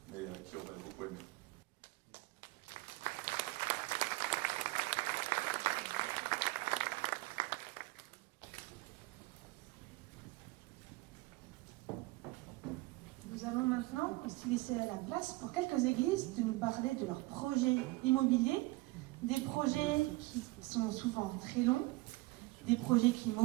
mais qui aurait beaucoup aimé. Nous allons maintenant aussi laisser la place pour quelques églises de nous parler de leurs projets immobiliers, des projets qui sont souvent très longs, des projets qui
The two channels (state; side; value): quieter; left; 21.8 dB